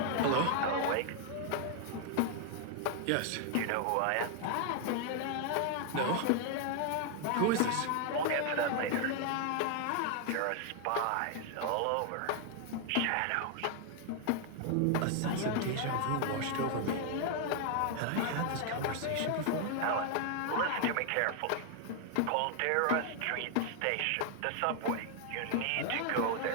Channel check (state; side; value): different; both; correlation 0.00